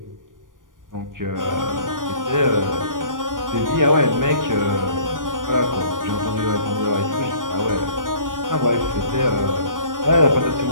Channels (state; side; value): late; left; 0.89 ms